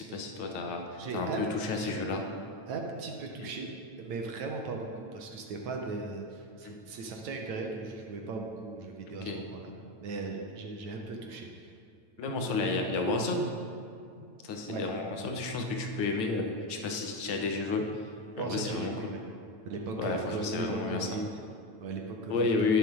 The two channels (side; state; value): left; late; 9.1 ms